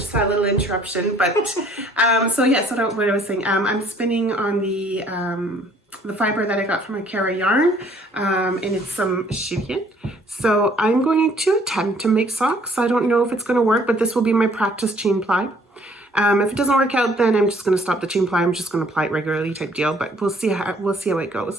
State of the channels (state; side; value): normal; both; correlation 0.60